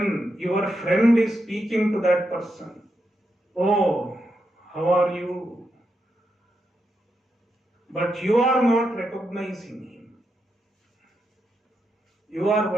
your friend is speaking to that person. Oh, how are you? But you are not recognizing him. You are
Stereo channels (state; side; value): normal; both; correlation 0.84